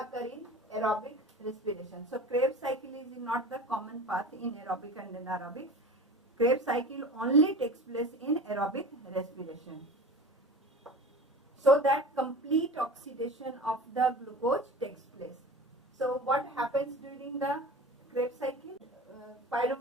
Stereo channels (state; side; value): normal; both; correlation 0.35